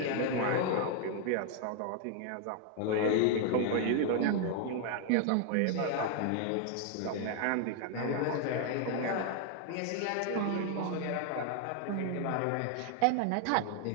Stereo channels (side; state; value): both; different; correlation 0.00